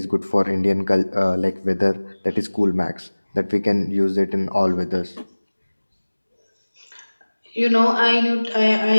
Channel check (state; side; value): inverted; both; correlation -1.00